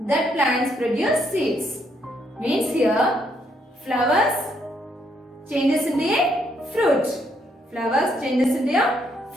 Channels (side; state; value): both; normal; correlation 0.73